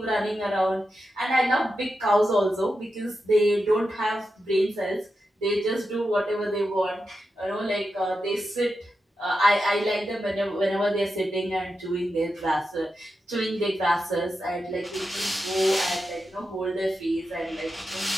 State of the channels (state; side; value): normal; both; correlation 0.89